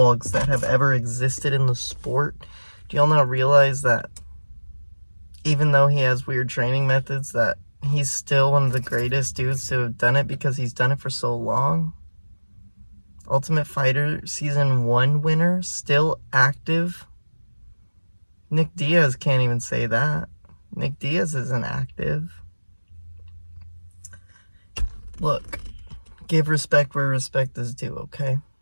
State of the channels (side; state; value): both; inverted; correlation -1.00